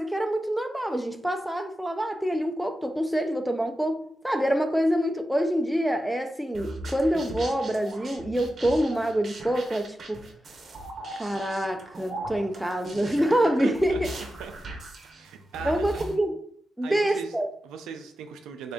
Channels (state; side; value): normal; both; correlation 0.92